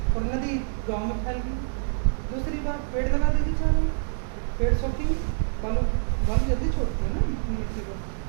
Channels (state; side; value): silent; left; digital silence